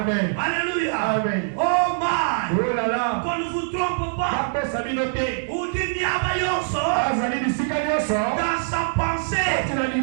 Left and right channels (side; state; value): left; silent; digital silence